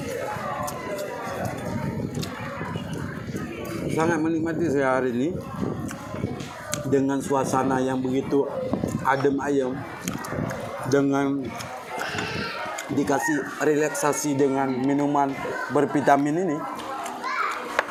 sangat menikmati saya hari ini dengan suasana yang begitu adem ayem, dengan dikasih relaksasi dengan minuman bervitamin ini,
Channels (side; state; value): both; identical; correlation 1.00